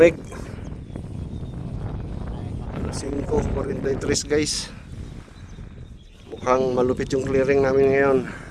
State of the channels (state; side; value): identical; both; correlation 1.00